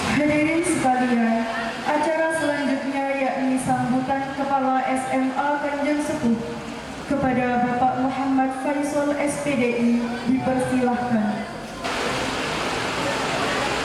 Hadirin sekalian, acara selanjutnya yakni sambutan Kepala SMA Kanjeng Sepuh kepada Bapak Muhammad Faisal SPDI dipersilahkan.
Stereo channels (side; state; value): both; identical; correlation 1.00